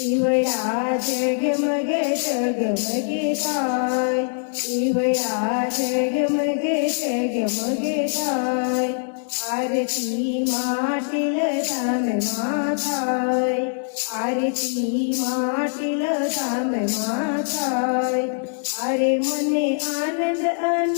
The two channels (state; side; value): silent; right; digital silence